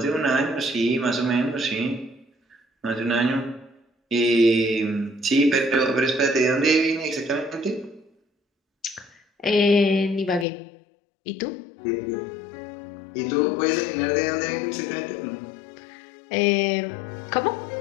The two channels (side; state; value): right; drops out; at 10.5 s